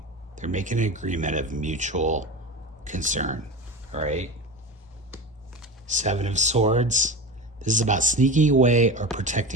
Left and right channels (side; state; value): both; normal; correlation 0.27